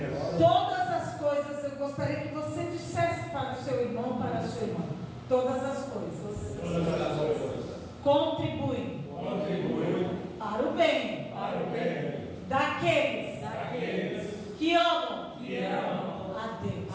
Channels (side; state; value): both; identical; correlation 1.00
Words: Todas as coisas, eu gostaria que você dissesse para o seu irmão, para a sua irmã, todas as coisas Todas as coisas contribuem contribuem para o bem para o bem daqueles que amam amam a Deus.